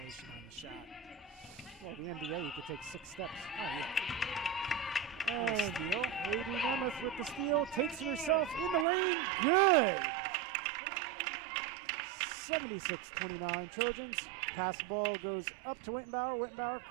on the shot. Well, the NBA, you could take 6 steps. Oh, yeah. And Steal. Haiti Nemeth with the steal, takes it herself in the lane. Good. 76-29 Trojans. Pass ball goes up to Wittenbauer. Wittenbauer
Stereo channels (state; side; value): drops out; left; at 8.8 s